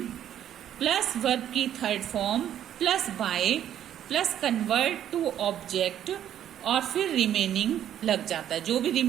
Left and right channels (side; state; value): left; quieter; 10.6 dB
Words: plus verb की third form plus by plus convert to object और फिर रिमेनिंग लग जाता है। जो भी